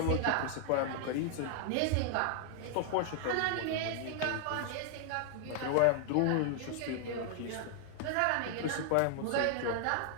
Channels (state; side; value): different; both; correlation 0.00